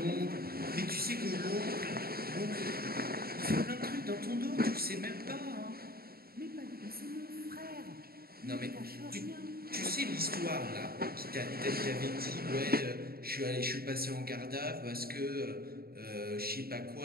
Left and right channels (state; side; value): late; left; 0.44 ms